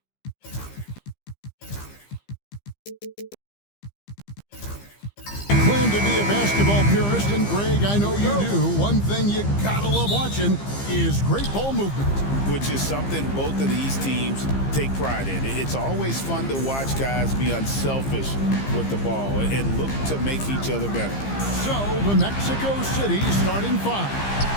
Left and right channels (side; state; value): right; late; 15 ms